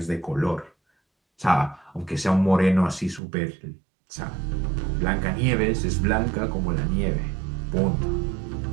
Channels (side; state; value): left; drops out; at 3.2 s